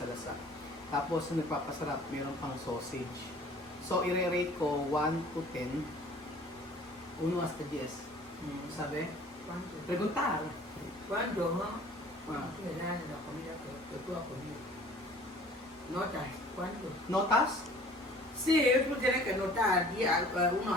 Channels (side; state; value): both; normal; correlation 0.50